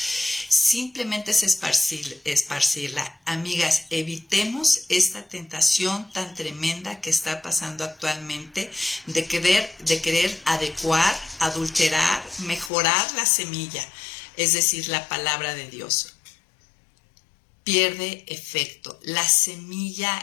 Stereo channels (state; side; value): drops out; right; at 12.7 s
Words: Simplemente es esparcirla. Amigas, evitemos esta tentación tan tremenda que está pasando actualmente de querer adecuar, adulterar, mejorar la semilla, es decir, la palabra de Dios. Pierde efecto. La